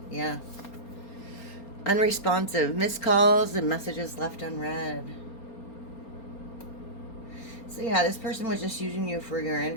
Yeah. Unresponsive. Missed calls and messages left unread. So yeah, this person was just using you for your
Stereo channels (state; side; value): late; right; 4.3 ms